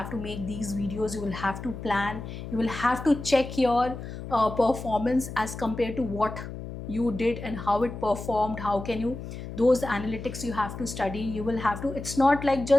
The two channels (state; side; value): noise; left; hum, 9 dB below the sound